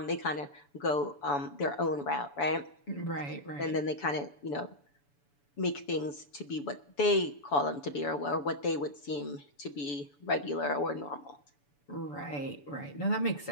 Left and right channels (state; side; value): late; right; 7.0 ms